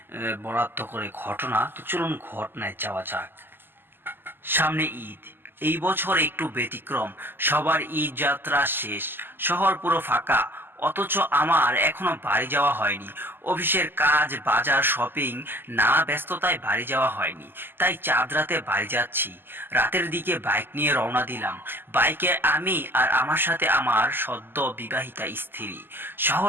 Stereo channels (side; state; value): left; late; 0.097 ms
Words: বরাদ্দ করে ঘটনা। তো চলুন ঘটনায় যাওয়া যাক। সামনে ঈদ, এই বছর একটু ব্যতিক্রম। সবার ঈদ যাত্রা শেষ, শহর পুরো ফাঁকা, অথচ আমার এখনো বাড়ি যাওয়া হয়নি। অফিসের কাজ, বাজার, শপিং, নানা ব্যস্ততায় বাড়ি যাওয়া হয়নি। তাই চাঁদ রাতে বাড়ি যাচ্ছি। রাতের দিকে বাইক নিয়ে রওনা দিলাম। বাইকে আমি আর আমার সাথে আমার সদ্য বিবাহিতা স্ত্রী।